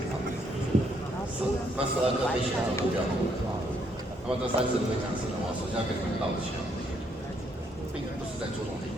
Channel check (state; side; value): normal; both; correlation 0.71